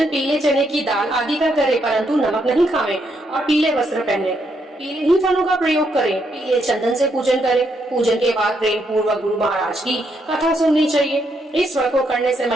पीले चने की दाल आदि का करे, परंतु नमक नहीं खावे और पीले वस्त्र पहने, पीले ही फलों का प्रयोग करें, पीले चंदन से पूजन करें। पूजन के बाद प्रेम पूर्वक गुरु महाराज की कथा सुननी चाहिए। इस व्रत को करने से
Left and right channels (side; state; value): both; normal; correlation 0.77